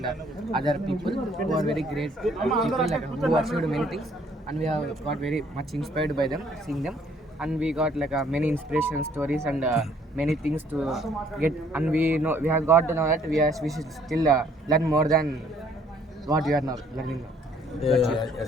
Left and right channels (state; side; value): normal; both; correlation 0.62